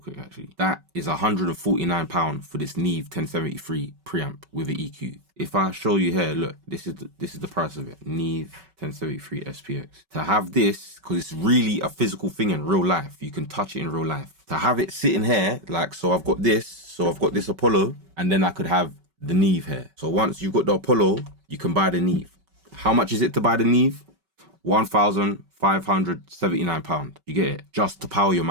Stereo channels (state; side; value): late; left; 5.3 ms